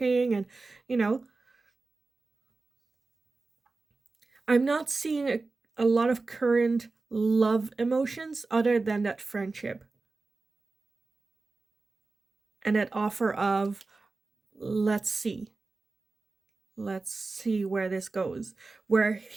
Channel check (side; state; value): left; quieter; 3.7 dB